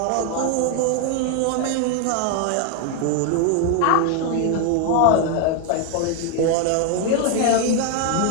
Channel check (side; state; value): both; different; correlation 0.01